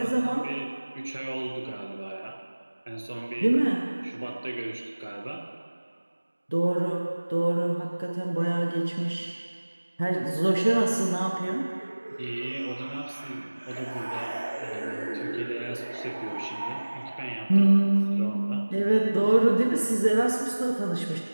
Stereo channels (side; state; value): both; inverted; correlation -1.00